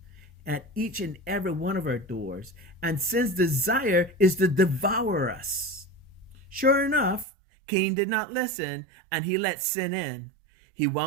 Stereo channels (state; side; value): drops out; left; at 7.2 s